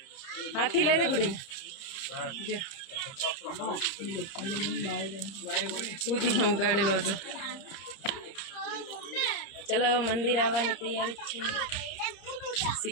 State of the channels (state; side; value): late; right; 30 ms